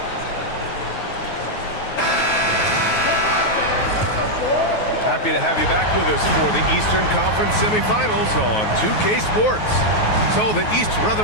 Happy to have you back with us for the Eastern Conference semifinals on 2K Sports. So the East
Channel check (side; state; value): right; late; 9.4 ms